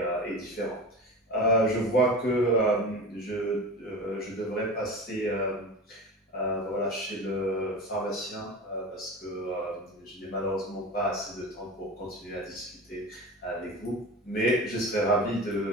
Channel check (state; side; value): normal; both; correlation 0.31